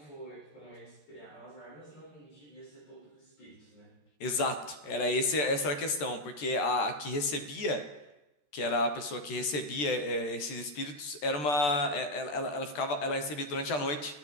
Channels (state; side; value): late; right; 13 ms